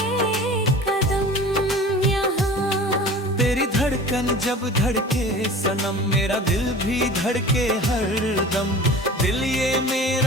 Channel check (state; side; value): normal; both; correlation 0.39